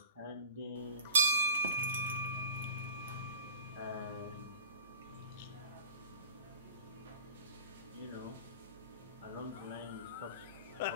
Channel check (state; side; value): inverted; both; correlation -0.41